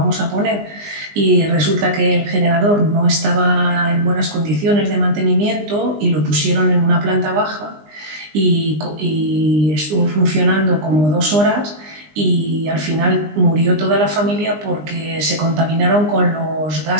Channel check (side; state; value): left; late; 20 ms